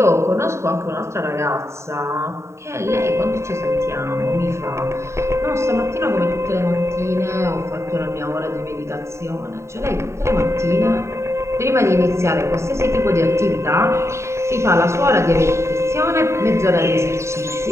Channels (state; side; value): late; left; 0.14 ms